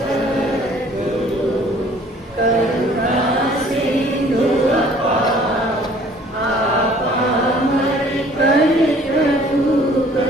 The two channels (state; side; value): normal; both; correlation 0.55